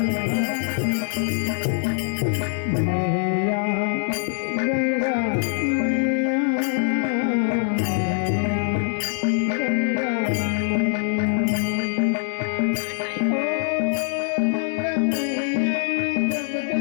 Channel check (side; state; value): right; silent; digital silence